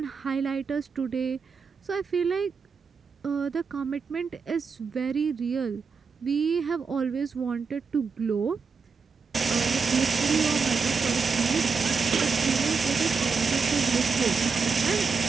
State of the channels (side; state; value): left; quieter; 5.2 dB